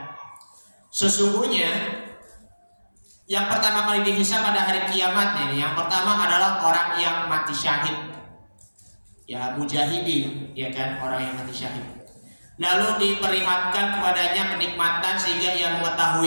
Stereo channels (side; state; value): both; inverted; correlation -1.00